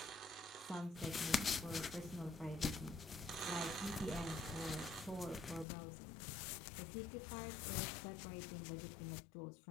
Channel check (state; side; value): drops out; right; at 5.7 s